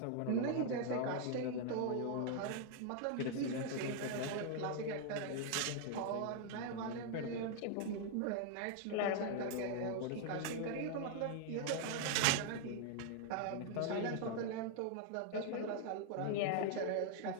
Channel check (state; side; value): different; both; correlation 0.00